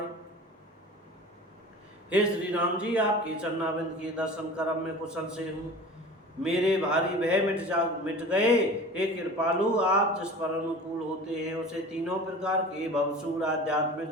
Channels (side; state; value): both; normal; correlation 0.38